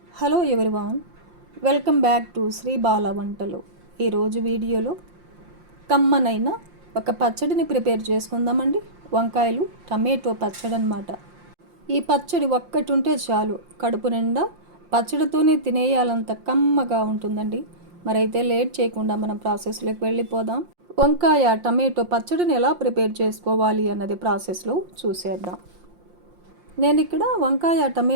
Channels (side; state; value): left; late; 5.7 ms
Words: Hello everyone, welcome back to Sri Bala Vantalu. ఈరోజు వీడియోలో కమ్మనైన ఒక పచ్చడిని ప్రిపేర్ చేసుకుందామండి. వంకాయలు టమాటో పచ్చడి అన్నమాట. ఈ పచ్చడి ఒక్కటి ఉంటే చాలు, కడుపు నిండా పచ్చడితోనే తినేయాలంత కమ్మగా ఉంటుందండి. మరైతే లేట్ చేయకుండా మనం ప్రాసెస్లోకి వెళ్ళిపోదాం. వంకాయ టమాటో పచ్చడిని ఎలా ప్రిపేర్ చేసుకోవాలి అన్నది ప్రాసెస్లో చూసేద్దాం. నేను ఇక్కడ వంకాయ